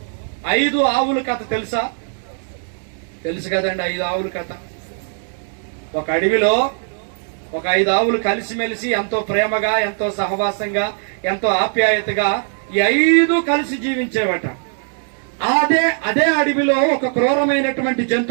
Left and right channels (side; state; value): left; silent; 57 dB below the other